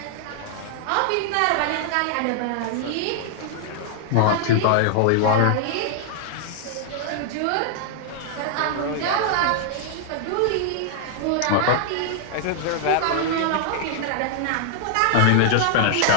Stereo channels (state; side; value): different; both; correlation -0.01